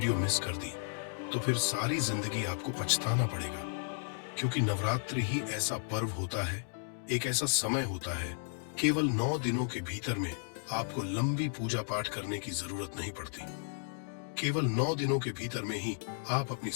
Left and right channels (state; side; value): silent; right; digital silence